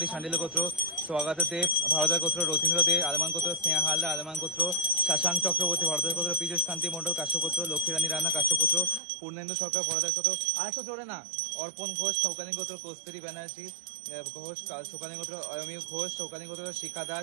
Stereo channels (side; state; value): left; drops out; at 9.0 s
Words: শান্ডিল্য গোত্র, স্বাগত দেব ভরদাস গোত্র, রথীন্দ্র দে আলমান গোত্র, স্নেহা হালদা আলমান গোত্র, শাশাঙ্ক চক্রবর্তী ভরদাস গোত্র, পীযুষ কান্তি মণ্ডল কাশ্যপ গোত্র, লক্ষ্মীরানী রানা কাশ্যপ গোত্র, পূর্ণেন্দু সরকার ভরদাস গোত্র, আর তো জোরে না, অর্পণ ঘোষ সৌকালীন গোত্র, কস্তুরী ব্যানার্জি ঘোষ শোকালী গোত্র, অয়মী ঘোষ শৌকালীন গোত্র, শিখা দাস